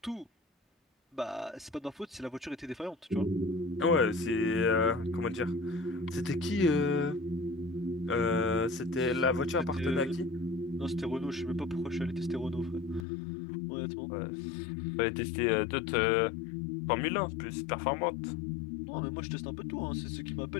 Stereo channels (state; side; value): drops out; right; at 13.1 s